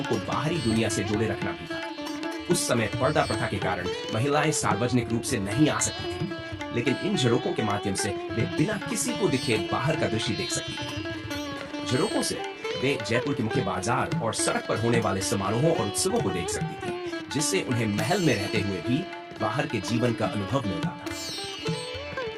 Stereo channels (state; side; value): identical; both; correlation 1.00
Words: को बाहरी दुनिया से जोड़े रखना भी था। उस समय पर्दा प्रथा के कारण महिलाएं सार्वजनिक रूप से नहीं आ सकती थी, लेकिन इन झरोकों के माध्यम से वे बिना किसी को दिखे बाहर का दृश्य देख सकती थी। झरोकों से वे जयपुर के मुख्य बाजार और सड़क पर होने वाले समारोहों और उत्सवों को देख सकती थी, जिससे उन्हें महल में रहते हुए भी बाहर के जीवन का अनुभव मिलता